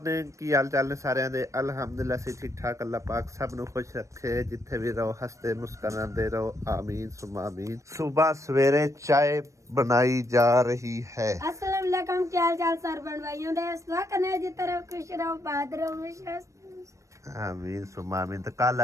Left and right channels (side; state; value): left; late; 0.15 ms